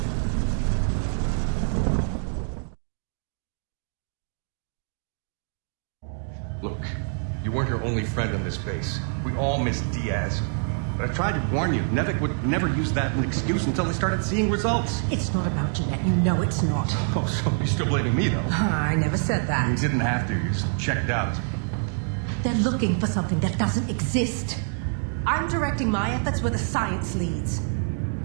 Look, you weren't her only friend on this base. We all miss Diaz. But I tried to warn you. Nevik would never use that as an excuse until they started seeing results. It's not about Jeanette. You know it's not. Oh, so you're still blaming me, though? I never said You that. didn't have to. You just checked out. They're looking for something that doesn't exist. I'm directing my efforts where the science leads.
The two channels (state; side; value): silent; left; 61 dB below the other